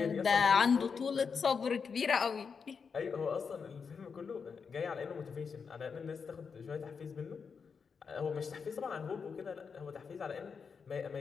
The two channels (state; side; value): quieter; right; 5.8 dB